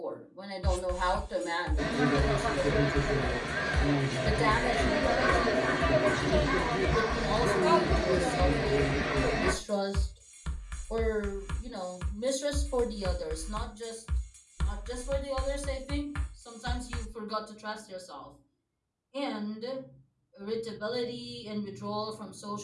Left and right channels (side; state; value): both; identical; correlation 1.00